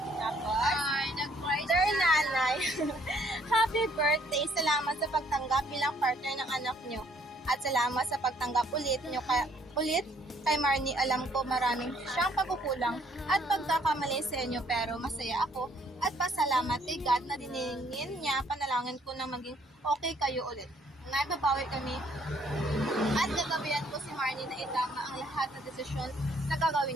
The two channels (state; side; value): normal; both; correlation 0.64